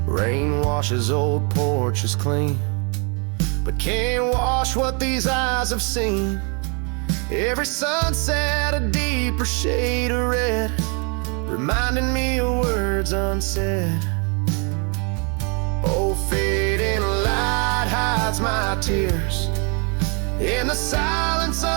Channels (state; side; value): quieter; left; 34.9 dB